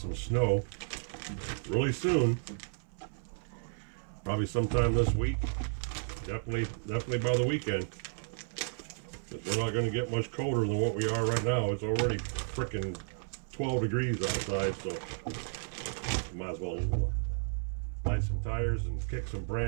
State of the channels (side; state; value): left; silent; 56 dB below the other